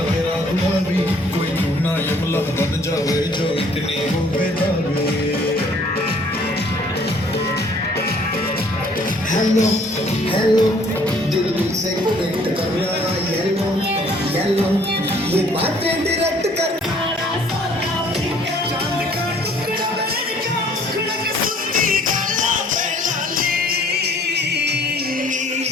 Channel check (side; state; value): both; normal; correlation 0.58